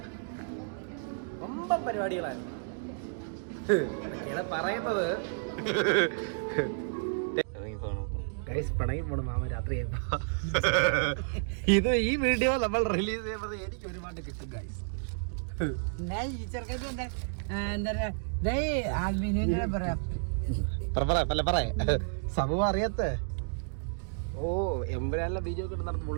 ரொம்ப പരിപാടികളാണ് പറയുന്നത്. ഗൈസ് പിണങ്ങി പോണ മാമ രാത്രി ഇത് ഈ വീഡിയോ നമ്മൾ റിലീസ് ചെയ്യുമ്പോൾ എനിക്ക് ഒരുപാട് കിട്ടും ഗൈസ്. സംഭവം അറിയാത്ത ഓ എമ്പുരാനിലെ വീഡിയോ ഒക്കെ നടന്ന്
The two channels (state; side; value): silent; left; digital silence